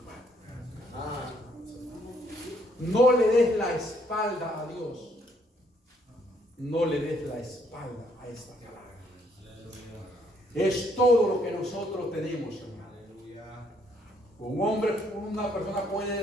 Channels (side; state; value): both; normal; correlation 0.69